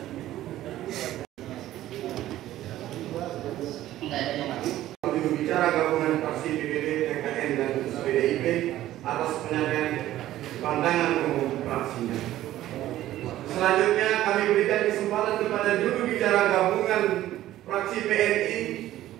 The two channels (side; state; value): left; quieter; 14.1 dB